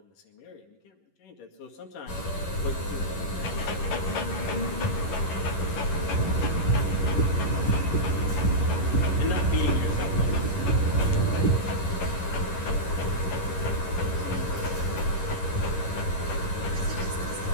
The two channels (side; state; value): right; late; 11 ms